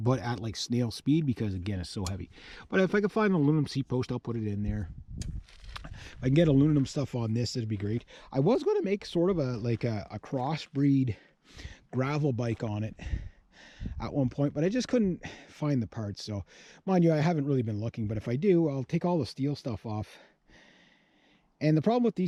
but at like snail speed, because again, it's so heavy. But if I could find an aluminum seat post, I'll put it in there. If I can get aluminum stuff on this, it'd be great. I was going to make sort of a crossbreed gravel bike on it at one point, but I just couldn't find the parts. So mind you, I haven't really been looking, but if I do, I'll take all the steel stuff off. And the problem with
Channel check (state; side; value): identical; both; correlation 1.00